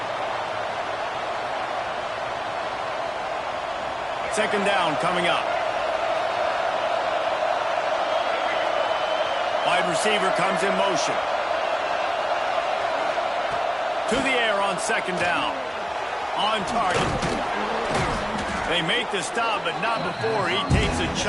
Second down coming up. Wide receiver comes in motion. To the air on 2nd down. On target. They make the stop, but not before he takes a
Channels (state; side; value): identical; both; correlation 1.00